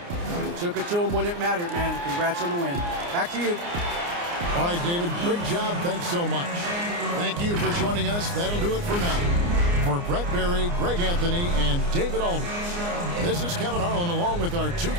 You took it to them when it mattered, man. Congrats on the win. Back to you. All right, David, great job. Thanks so much. Thank you for joining us. That'll do it for now. For Brett Berry, Greg Anthony, and David Aldridge, this is Kevin Harlan along with our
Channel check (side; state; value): left; late; 29 ms